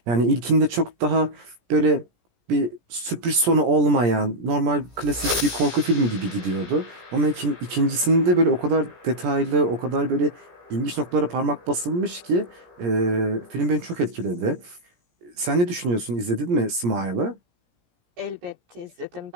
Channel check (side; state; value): left; late; 17 ms